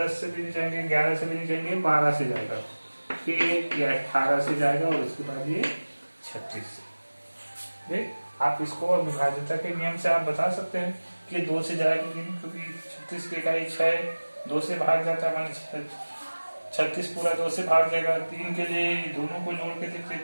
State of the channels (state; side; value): inverted; both; correlation -1.00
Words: से भी नहीं जाएंगे, 11 से भी नहीं जाएंगे, 12 से जाएगा, फिर ये 18 से जाएगा और उसके बाद ये 36 से। देख, आप इसको विभाज्यता के नियम से आप बता सकते हैं कि 2 से जाएगा, क्योंकि 36 की इकाई 6 2 से भाग जाता है, माने 36 पूरा 2 से भाग जाएगा। 3 के लिए दोनों को जोड़ के देखते,